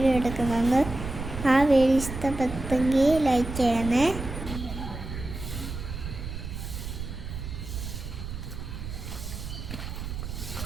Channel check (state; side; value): noise; right; rumble, 7 dB below the sound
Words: എടുക്കുന്നുണ്ട്. ആ വീഡിയോ ഇഷ്ടപ്പെട്ടെങ്കിൽ ലൈക്ക് ചെയ്യണേ.